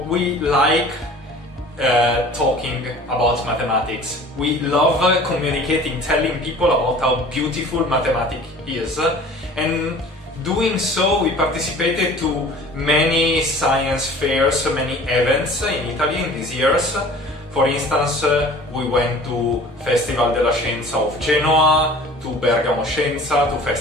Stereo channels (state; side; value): normal; both; correlation 0.45